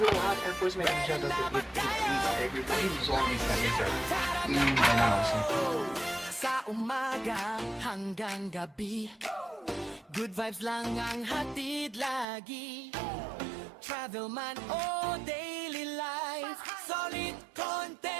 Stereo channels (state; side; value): drops out; left; at 12.2 s